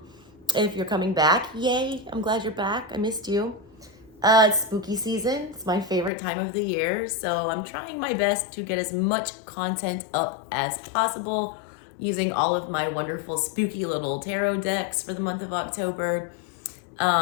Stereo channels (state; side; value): drops out; right; at 6.1 s